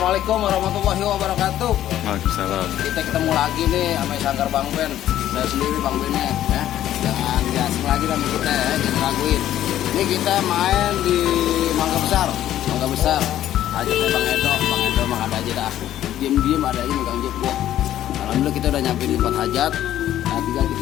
Assalamualaikum warahmatullahi wabarakatuh. Waalaikumsalam. Kita ketemu lagi nih sama Sanggar Bang Ben. Saya sendiri Bang Bennya ya. Jangan asing lagi sama kita ya, jangan raguin. Ini kita main di Mangga Besar. Mangga Besar. Ajak Bang Edo mah ada aja dah. Diem ada aja megang jep dia. Alhamdulillah kita udah nyampe di tempat hajat. Nah, tinggal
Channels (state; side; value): quieter; right; 12.3 dB